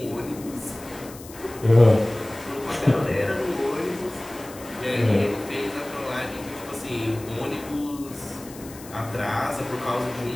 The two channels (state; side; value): noise; left; hiss, 18 dB below the sound